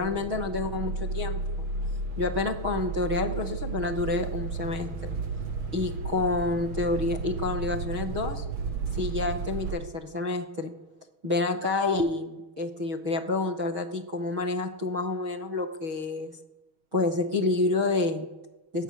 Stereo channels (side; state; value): left; late; 6.3 ms